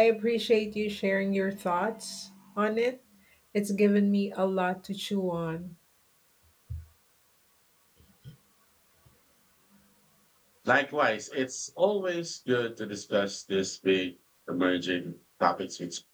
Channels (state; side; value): identical; both; correlation 1.00